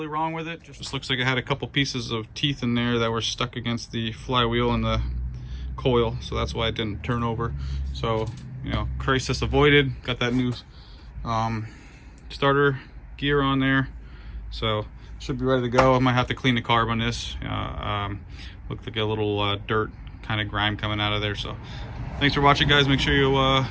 wrong with it. Just looks like it had a couple pieces of teeth in there that were stuck against the flywheel and the coil, so that's why it didn't turn over. So, you know, crisis avoided. Got that new starter gear on there, so should be ready to go. I might have to clean the carb on this. Looked like a little dirt kind of grime coming out of there. So thanks for watching, guys. Make sure you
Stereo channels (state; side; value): identical; both; correlation 1.00